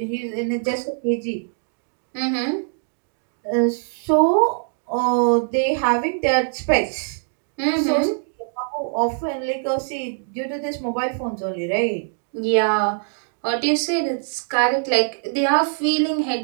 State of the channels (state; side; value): silent; left; 64 dB below the other